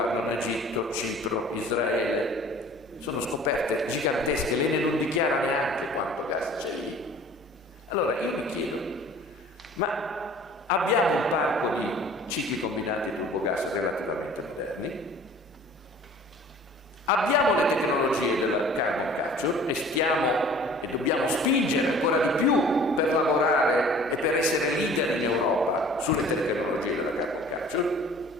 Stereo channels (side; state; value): both; normal; correlation 0.48